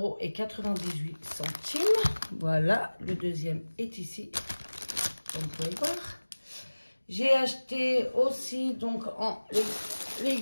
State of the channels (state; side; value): inverted; both; correlation -1.00